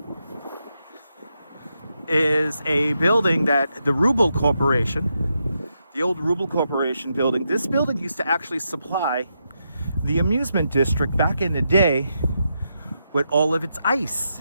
is a building that the Rubble Corporation, the old Rubble Corporation building. This building used to actually supply the amusement district back in the day with all of its ice.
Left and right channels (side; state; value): both; inverted; correlation -0.84